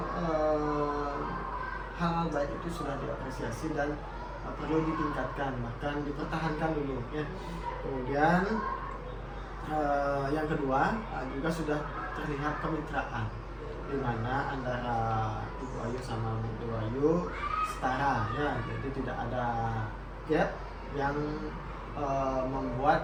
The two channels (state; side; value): identical; both; correlation 1.00